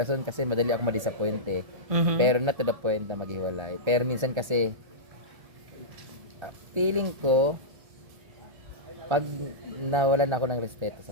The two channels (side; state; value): left; late; 1.3 ms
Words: kasi madali ako ma-disappoint eh. Mhm. Pero not to the point na maghiwalay. Pero minsan kasi, feeling ko, pag nawalan ako ng respeto